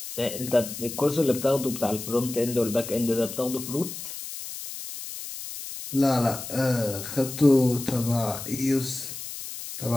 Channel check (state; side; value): noise; left; hiss, 9 dB below the sound